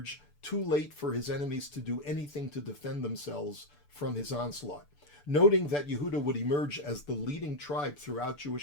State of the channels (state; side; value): late; right; 6.8 ms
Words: too late for his enemies to do anything to defend themselves from his onslaught. Noting that Yehuda would emerge as the leading tribe throughout